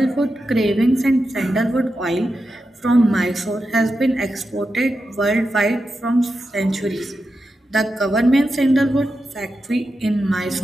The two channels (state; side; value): normal; both; correlation 0.89